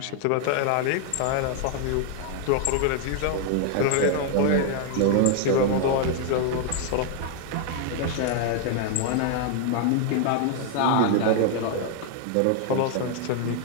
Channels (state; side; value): different; both; correlation 0.00